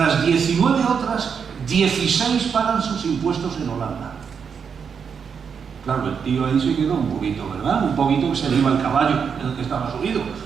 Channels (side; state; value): left; quieter; 6.6 dB